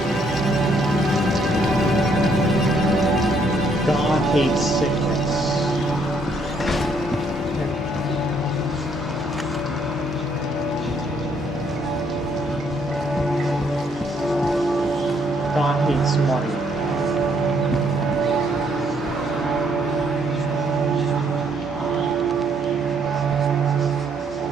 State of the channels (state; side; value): normal; both; correlation 0.69